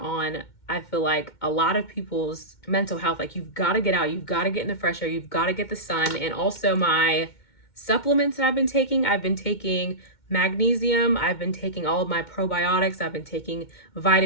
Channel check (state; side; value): late; right; 2.2 ms